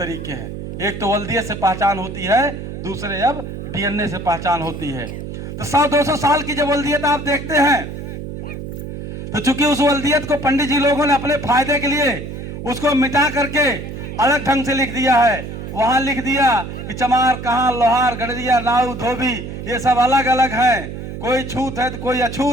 हैं। एक तो वल्दियत से पहचान होती है, दूसरे अब डीएनए से पहचान होती है। तो 100-200 साल की जब वल्दियत आप देखते हैं तो चूंकि उस वल्दियत को पंडित जी लोगों ने अपने फायदे के लिए उसको मिटा करके अलग ढंग से लिख दिया है। वहां लिख दिया कि चमार, कहां, लोहार, गड़रिया, नाऊ, धोबी, ये सब अलग अलग हैं। कोई छूत है तो कोई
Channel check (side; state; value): right; noise; hum, 8 dB below the sound